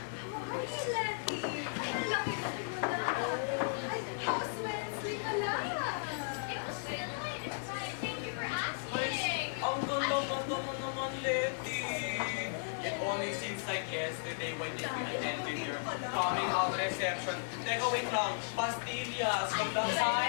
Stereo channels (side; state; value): right; silent; 54 dB below the other